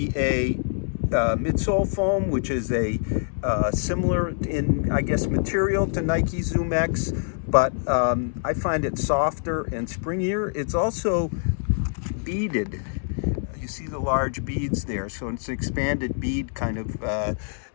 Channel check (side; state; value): right; silent; 62 dB below the other